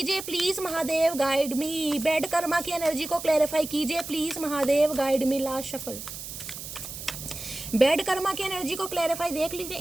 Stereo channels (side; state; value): right; noise; hiss, 10 dB below the sound